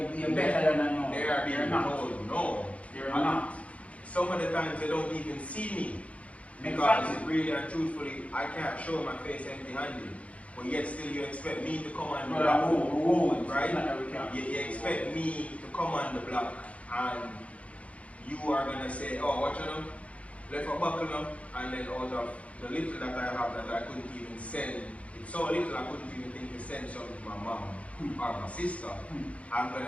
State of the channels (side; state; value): right; late; 0.064 ms